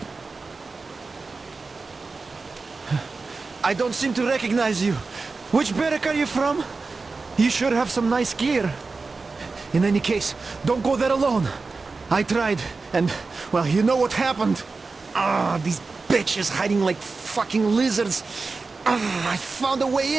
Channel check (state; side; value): quieter; left; 4.1 dB